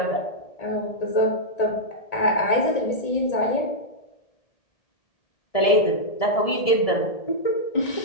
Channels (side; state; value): right; late; 1.7 ms